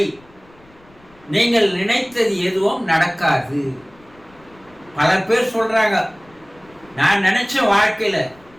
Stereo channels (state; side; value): noise; left; rumble, 28 dB below the sound